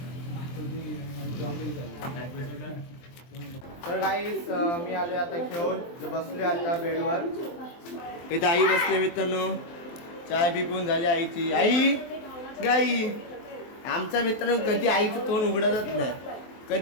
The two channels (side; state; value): right; late; 23 ms